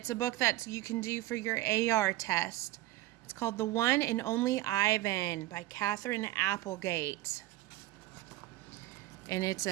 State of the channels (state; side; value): quieter; left; 16.5 dB